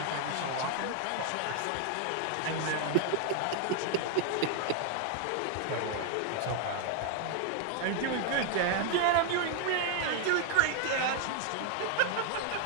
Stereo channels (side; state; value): both; different; correlation 0.00